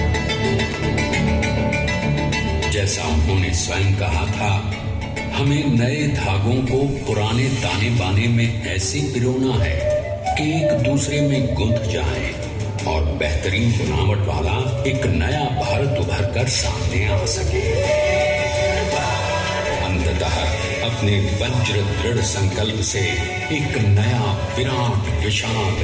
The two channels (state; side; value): identical; both; correlation 1.00